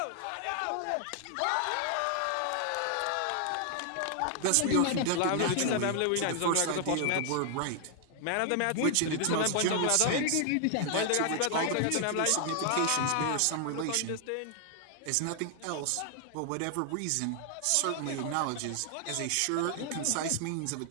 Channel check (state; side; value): different; both; correlation 0.00